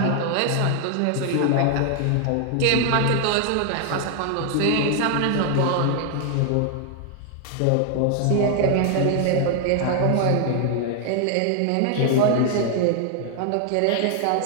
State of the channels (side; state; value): both; different; correlation 0.00